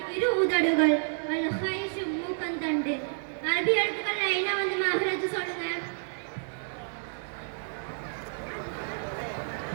இரு உதடுகள், அல்-ஹைஷ் மூக்கந்தண்டு. அரபி எழுத்துக்கள் என்ன வந்து மஹ்ரஜ் சொல்லுங்க.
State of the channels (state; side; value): silent; left; digital silence